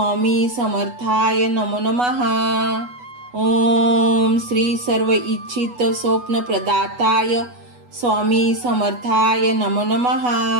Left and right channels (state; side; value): late; left; 8.2 ms